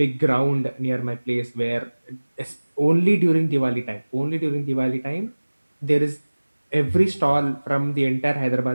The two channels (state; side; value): inverted; both; correlation -1.00